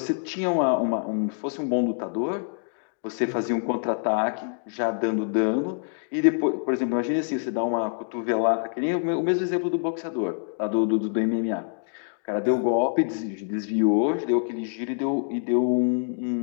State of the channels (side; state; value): right; silent; digital silence